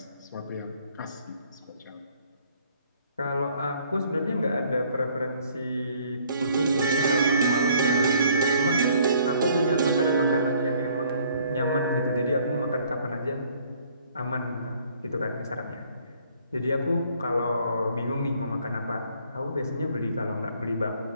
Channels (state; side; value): inverted; both; correlation -0.61